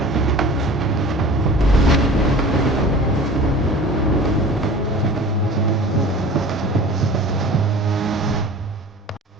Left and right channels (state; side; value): normal; both; correlation 0.41